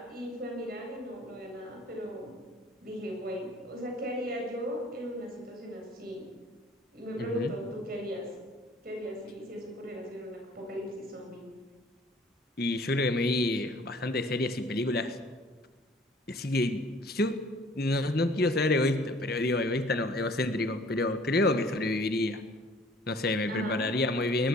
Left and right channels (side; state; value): both; normal; correlation 0.54